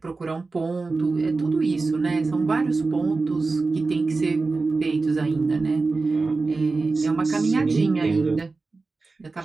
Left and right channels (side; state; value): left; quieter; 3.8 dB